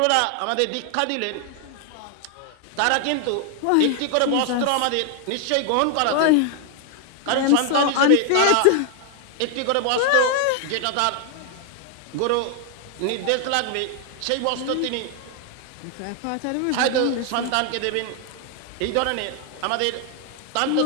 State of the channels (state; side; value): different; both; correlation 0.00